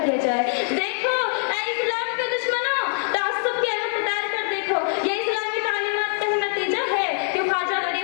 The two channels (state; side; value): silent; right; 58 dB below the other